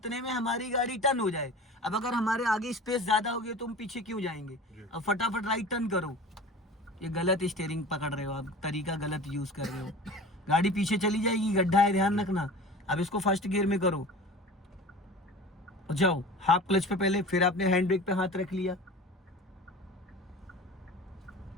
में हमारी गाड़ी टर्न हो जाए। अब अगर हमारे आगे स्पेस ज्यादा होगी तो हम पीछे क्यों जाएंगे? जी। अब फटाफट राइट टर्न करो। ये गलत स्टीयरिंग पकड़ रहे हो आप, तरीका गलत यूज कर रहे हो। गाड़ी पीछे चली जाएगी, गड्ढा है, ध्यान रखना। अब इसको फर्स्ट गियर में करो। जाओ हाफ क्लच पे पहले, फिर आपने हैंड ब्रेक पे हाथ रख लिया।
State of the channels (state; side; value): normal; both; correlation 0.37